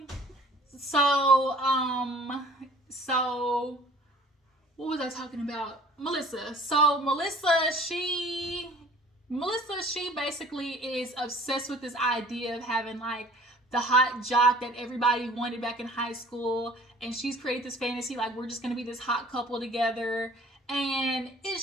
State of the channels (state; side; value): normal; both; correlation 0.51